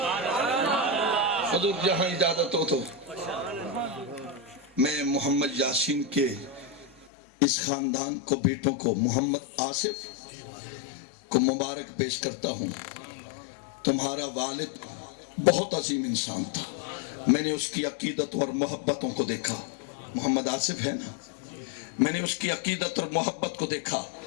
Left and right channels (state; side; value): drops out; right; at 7.1 s